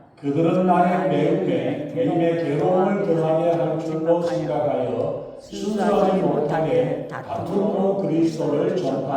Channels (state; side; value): identical; both; correlation 1.00